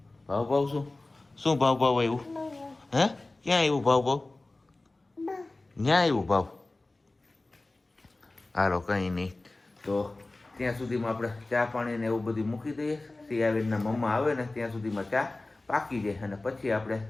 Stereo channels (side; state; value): right; quieter; 3.0 dB